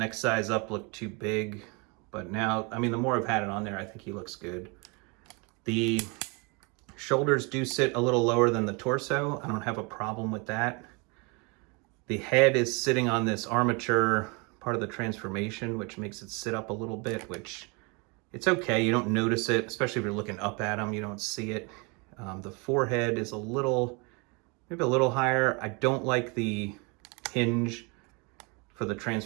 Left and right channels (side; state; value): left; quieter; 30.6 dB